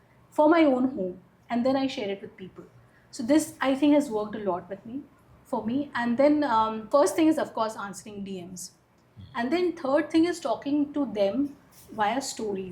for my own home and then I share it with people. So this I think has worked a lot for me. And then first thing is of course answering DMs. And then third thing is talking to them via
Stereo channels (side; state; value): both; identical; correlation 1.00